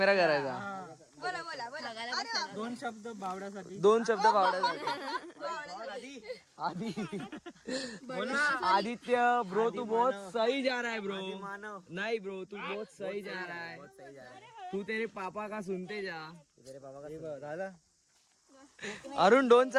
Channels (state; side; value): identical; both; correlation 1.00